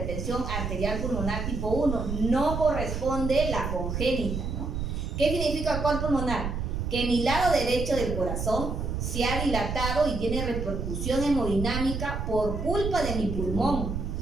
arterial pulmonar tipo 1. No corresponde la congénita, ¿no? ¿Qué significa cor pulmonar? Que mi lado derecho del corazón se ha dilatado y tiene repercusión hemodinámica por culpa de mi pulmón.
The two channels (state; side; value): noise; right; rumble, 3 dB below the sound